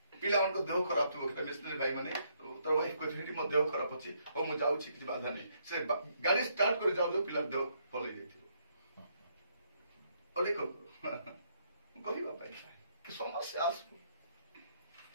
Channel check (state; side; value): inverted; both; correlation -0.73